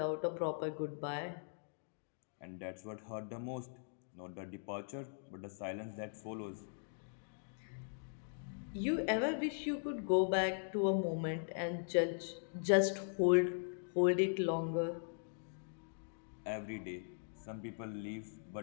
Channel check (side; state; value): right; silent; digital silence